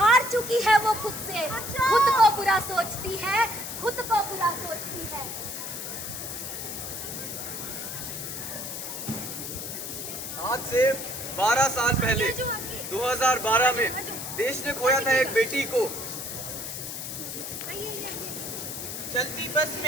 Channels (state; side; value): noise; left; hiss, 7 dB below the sound